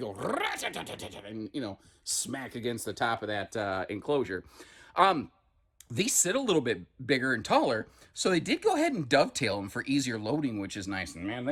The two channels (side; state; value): both; identical; correlation 1.00